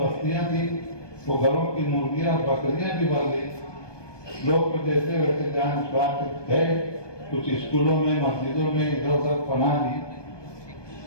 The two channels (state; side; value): late; right; 1.2 ms